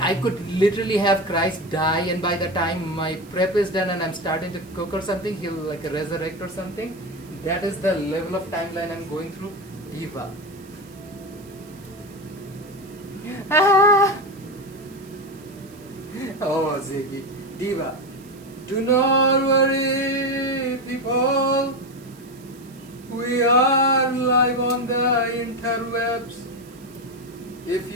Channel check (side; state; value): right; noise; hiss, 25 dB below the sound